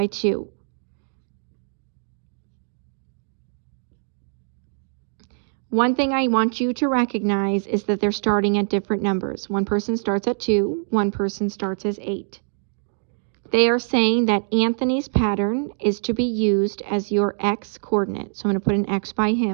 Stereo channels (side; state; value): left; silent; digital silence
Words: 2. One thing I want you to recognize is that they're starting at different numbers. One person starts at 2, one person starts as 8. They are saying that Anthony's pattern is to be used as your X coordinate. So I'm going to put an X by